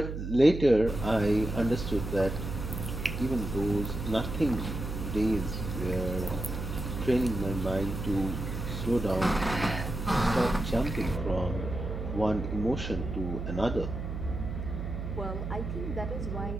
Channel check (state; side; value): noise; right; hum, 5 dB below the sound